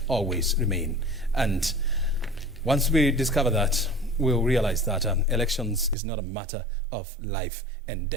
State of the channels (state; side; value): drops out; left; at 6.0 s